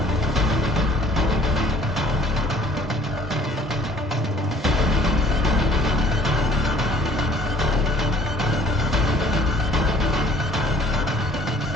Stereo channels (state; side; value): normal; both; correlation 0.55